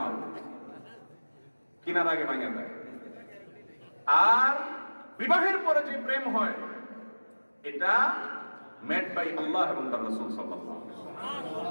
কিনার আগে ভেঙে যায়। আর বিবাহের পরে যে প্রেম হয় এটা মেড বাই আল্লাহ এবং তার রাসূল সাল্লাল্লাহু আলাইহি ওয়াসাল্লাম।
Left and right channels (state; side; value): inverted; both; correlation -1.00